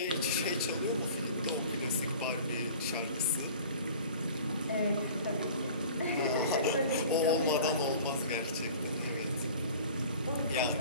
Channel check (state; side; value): inverted; both; correlation -0.44